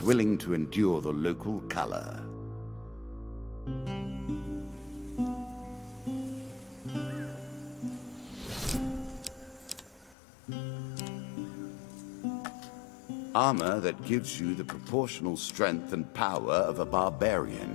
willing to endure the local color. Armor that gives you the proportional strength and power of a barbarian,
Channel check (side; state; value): right; drops out; at 10.2 s